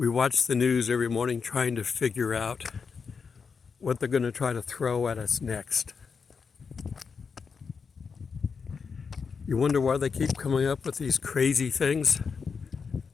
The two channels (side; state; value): right; quieter; 5.6 dB